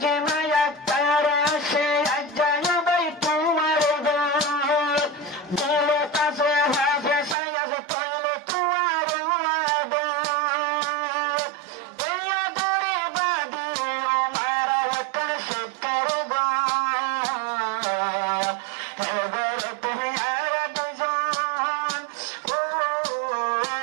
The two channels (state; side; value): drops out; left; at 7.4 s